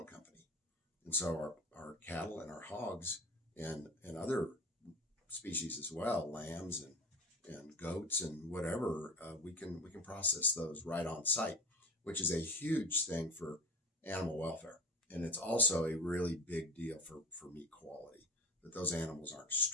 company. And so our cattle and our hogs and other species as well, lambs and goats and whatever, we can process those right on site, which is a huge thing for animal welfare. And it's also a really big deal for meat quality, that those animals aren't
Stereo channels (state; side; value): normal; both; correlation 0.32